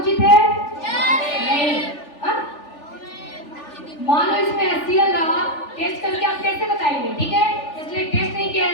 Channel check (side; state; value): right; late; 3.4 ms